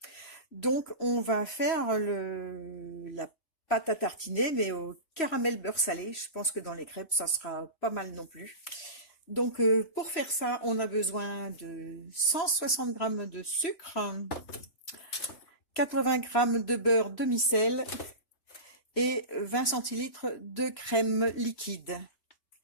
Donc, on va faire la pâte à tartiner, mais au caramel beurre salé. Je pense que dans les crêpes, ça sera pas mal non plus. Donc, pour faire ça, on a besoin de 160 grammes de sucre, 80 grammes de beurre demi-sel et 20 centilitres de crème liquide.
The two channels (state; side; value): late; right; 3.0 ms